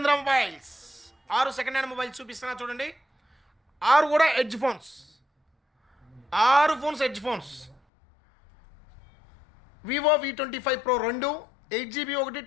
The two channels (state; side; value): drops out; right; at 7.8 s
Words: mobiles. 6 second hand mobiles చూపిస్తున్నా చూడండి. 6 కూడా edge phones. 6 phones edge phones. Vivo V25 Pro 2, 8GB ఒకటి,